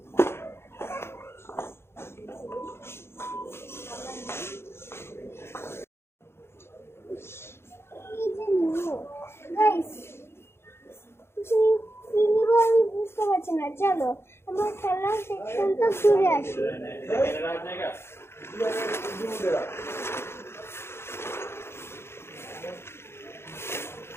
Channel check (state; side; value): late; right; 0.12 ms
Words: এই যে নিব গাইস, কিছু কি নিব আমি বুঝতে পারছি না। চলো আমরা খেলার সেকশনটা ঘুরে আসি।